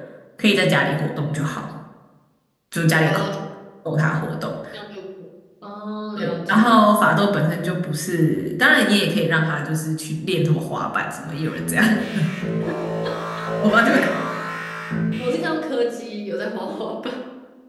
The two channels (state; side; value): identical; both; correlation 1.00